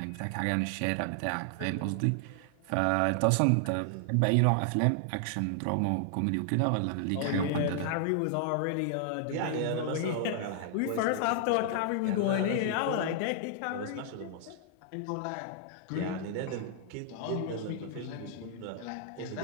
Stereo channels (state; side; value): different; both; correlation 0.00